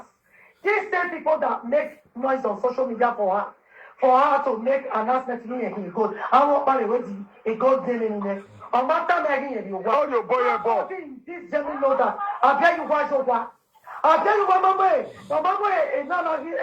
These same people that make noise on social media for her to make announcement to me good. I want by the way a good deal in there. On my time again, you want your boy. This gentleman know that. I tell you why so far. I tell you what, Mama is not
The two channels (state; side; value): identical; both; correlation 1.00